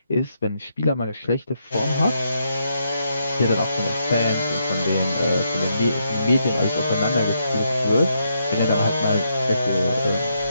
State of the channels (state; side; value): inverted; both; correlation -0.79